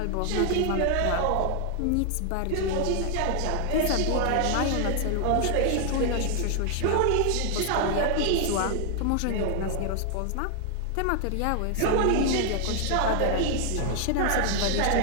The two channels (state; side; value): different; both; correlation 0.00